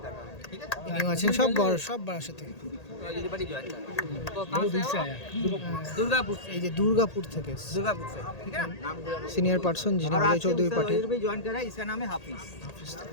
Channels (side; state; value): right; late; 1.8 ms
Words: कर रहा है। ठीक है, ইনিও আছেন সব বড় সব বারাসাত থেকে। OJT पार्टी ज्वाइन कर रहा है। तो कहाँ से आया? दुर्गापुर से। এই যে দুর্গাপুর থেকে दुर्गापुर से, ठीक है ना। সিনিয়র পার্সন যিনি और অজয় आज से চৌধুরী उस्ताद পার্টির। OJT भी ज्वाइन कर रहा है, इसका नाम है हाफिज।